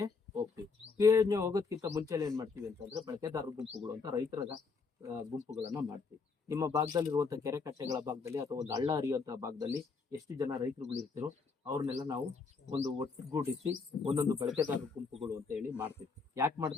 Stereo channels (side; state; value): right; quieter; 4.7 dB